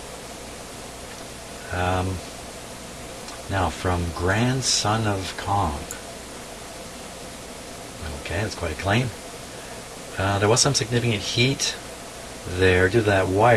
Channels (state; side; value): identical; both; correlation 1.00